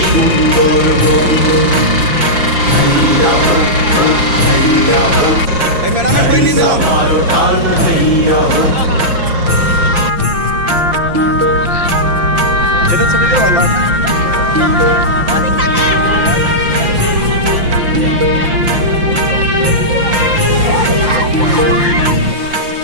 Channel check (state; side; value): late; left; 5.8 ms